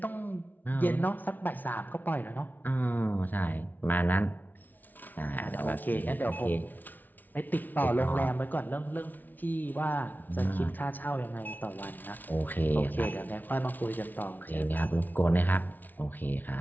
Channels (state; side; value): late; right; 0.082 ms